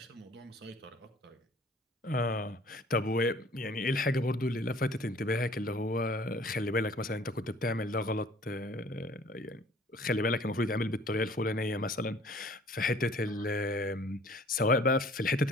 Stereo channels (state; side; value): normal; both; correlation 0.53